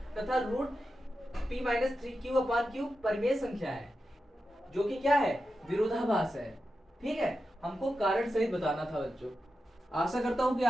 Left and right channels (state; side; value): normal; both; correlation 0.90